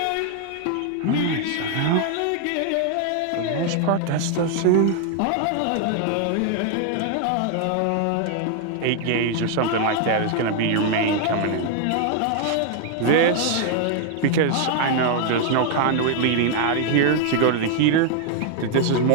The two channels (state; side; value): different; both; correlation 0.00